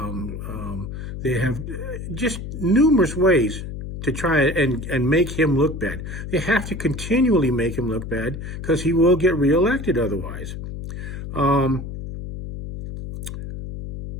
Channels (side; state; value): left; noise; hum, 8 dB below the sound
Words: They have just numerous ways to try and make him look bad. They have to continually make him look bad because he will get reelected otherwise. There